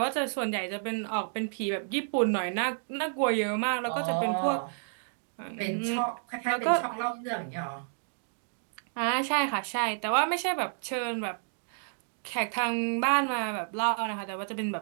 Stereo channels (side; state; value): left; silent; digital silence